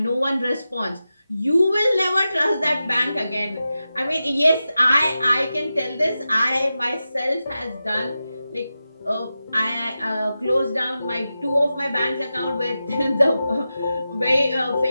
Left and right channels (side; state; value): both; inverted; correlation -0.92